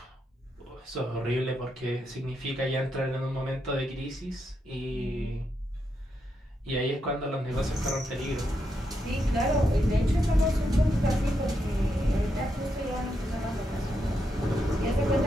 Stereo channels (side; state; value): both; normal; correlation 0.82